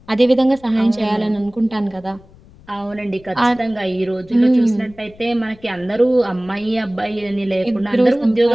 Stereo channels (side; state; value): left; noise; rumble, 25 dB below the sound